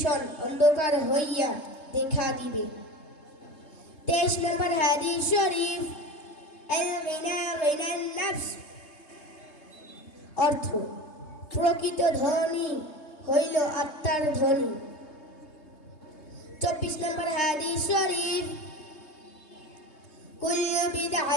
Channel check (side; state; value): right; late; 3.2 ms